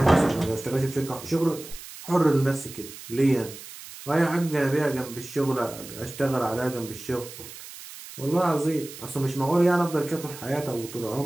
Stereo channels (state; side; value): noise; right; hiss, 14 dB below the sound